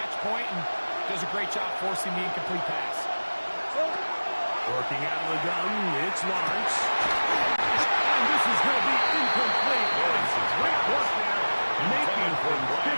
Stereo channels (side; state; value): both; inverted; correlation -1.00